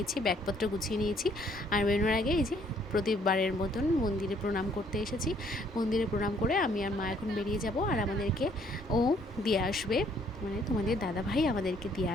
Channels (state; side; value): normal; both; correlation 0.64